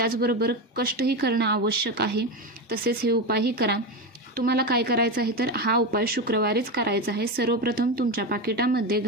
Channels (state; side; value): normal; both; correlation 0.16